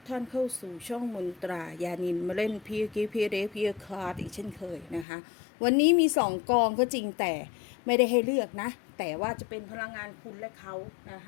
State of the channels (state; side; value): drops out; right; at 5.1 s